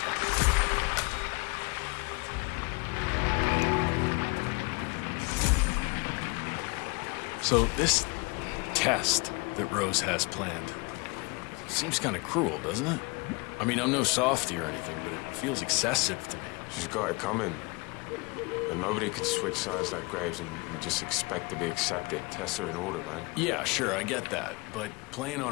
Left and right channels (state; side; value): quieter; right; 28.3 dB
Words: So this test that Rose has planned seems kind of cruel, doesn't it? I mean, I'm no softy or anything, but it feels excessive to me. She's got it coming. And nobody can switch sides like Graves and just expect to be accepted. Tests are in order, man. Yeah, sure, I get that. But playing on